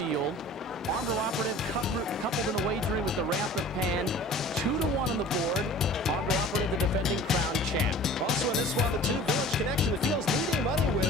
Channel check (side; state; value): both; normal; correlation 0.43